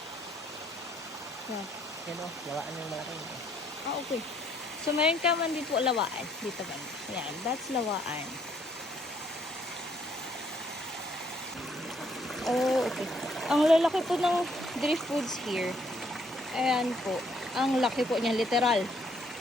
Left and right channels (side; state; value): both; normal; correlation 0.67